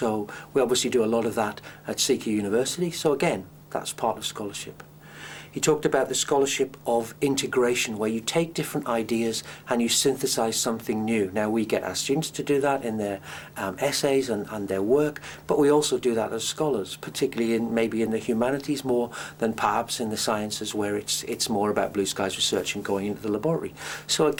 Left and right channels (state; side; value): identical; both; correlation 1.00